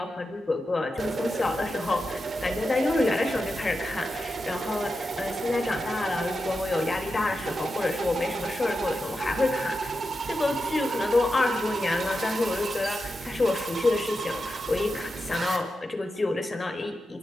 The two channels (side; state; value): both; normal; correlation 0.89